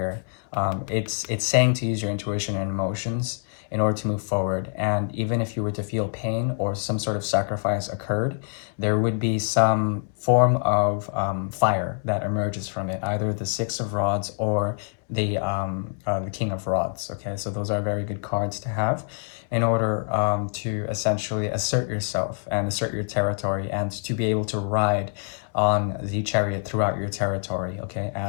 It's saying to use your intuition and emotions in order to move forward. And even if you were to feel pain or some sort of sacrifice occurred, there would be some form of fire that emerges from it, either the 6 of Rods or the King of Rods. Okay, so those are very good cards to have in order to essentially assert yourself and assert your territory and to be able to ride on the chariot throughout your territory, okay,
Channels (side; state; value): right; silent; 58 dB below the other